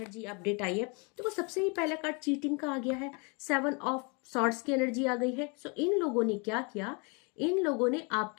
अपडेट आई है। तो सबसे ही पहला कार्ड चीटिंग का आ गया है, 7 ऑफ सॉर्ड्स की एनर्जी आ गई है। सो इन लोगों ने क्या किया, इन लोगों ने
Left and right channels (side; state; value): right; quieter; 32.5 dB